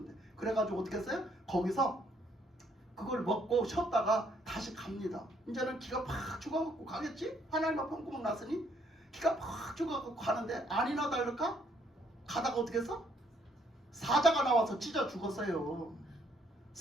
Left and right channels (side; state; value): both; normal; correlation 0.68